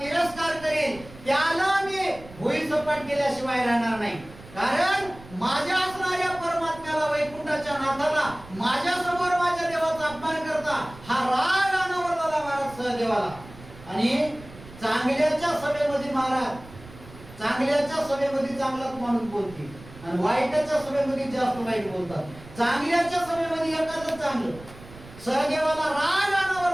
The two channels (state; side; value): noise; right; rumble, 18 dB below the sound